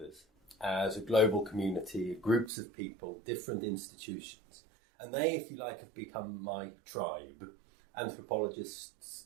as a global community, groups of people, different institutions. And they, if you like, have become my tribe. Anthropologists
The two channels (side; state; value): left; drops out; at 2.5 s